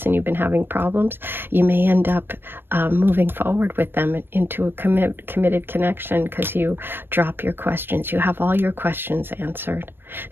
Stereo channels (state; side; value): late; left; 0.099 ms